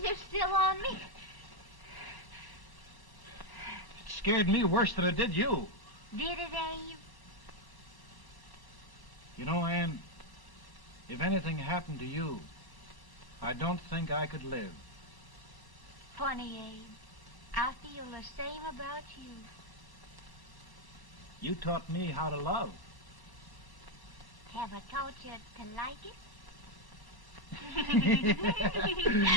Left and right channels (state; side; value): late; right; 1.0 ms